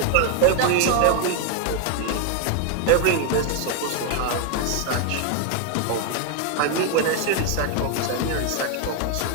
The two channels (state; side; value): different; both; correlation 0.01